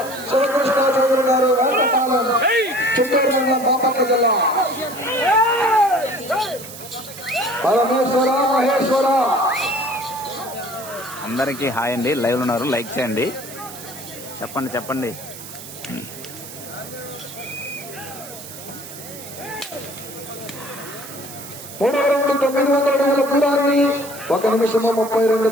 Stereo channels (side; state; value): right; noise; hiss, 14 dB below the sound